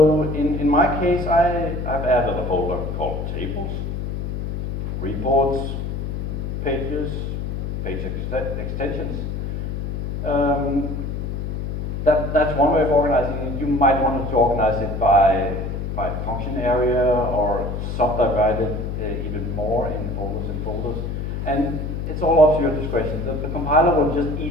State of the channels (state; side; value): noise; left; hum, 4 dB below the sound